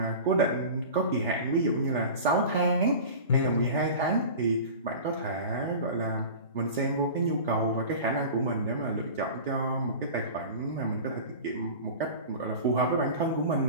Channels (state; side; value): inverted; both; correlation -0.35